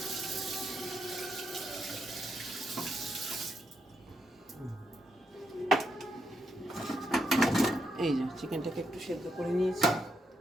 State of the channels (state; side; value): normal; both; correlation 0.81